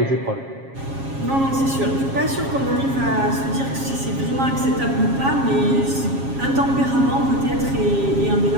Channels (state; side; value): late; left; 7.4 ms